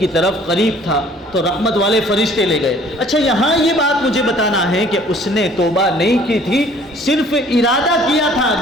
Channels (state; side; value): normal; both; correlation 0.55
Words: طرف قریب تھا، تو رحمت والے فرشتے لے گئے۔ اچھا، یہاں یہ بات مجھے بتانا ہے کہ اس نے توبہ نہیں کی تھی، صرف ارادہ کیا تھا،